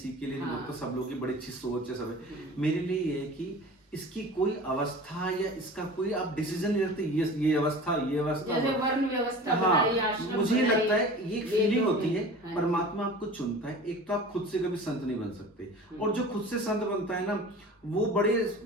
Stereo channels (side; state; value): both; normal; correlation 0.38